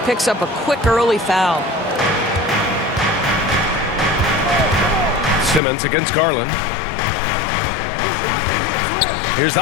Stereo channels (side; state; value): right; drops out; at 5.6 s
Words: picks up a quick early foul. Simmons against Garland. Here's